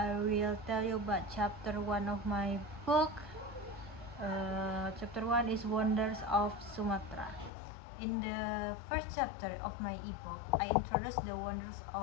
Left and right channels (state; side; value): drops out; right; at 7.5 s